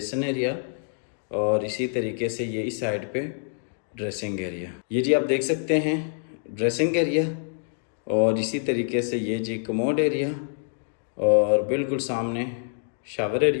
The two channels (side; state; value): right; silent; 61 dB below the other